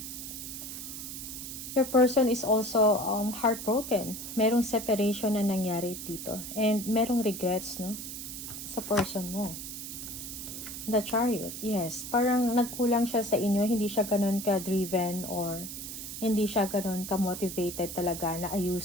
Your person is also heartbroken. Merong separation na nangyari dito. And merong regrets, no? Sa person mo. The Chariot, yes. Parang nagkulang siya sa inyo. Hindi siya ganun ka-driven or hindi siya ganun ka-motivated talaga na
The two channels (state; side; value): noise; right; hiss, 8 dB below the sound